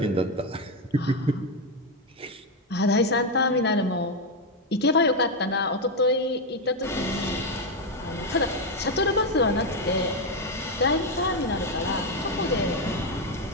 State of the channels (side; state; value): both; normal; correlation 0.06